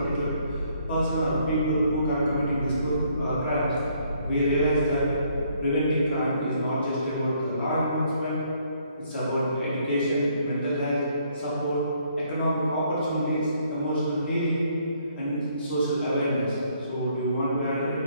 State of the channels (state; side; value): inverted; both; correlation -0.67